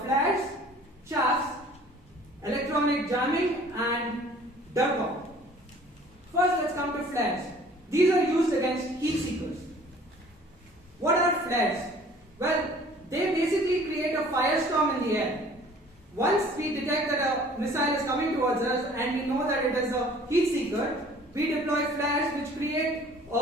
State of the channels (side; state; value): both; normal; correlation 0.52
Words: flares, chaffs, electronic jamming, and DERCOM. First, let's come to flares. These are used against heat seekers. What are flares? Well, they basically create a firestorm in the air. Once we detect that a missile is coming towards us and we know that it is a heat seeker, we deploy flares which create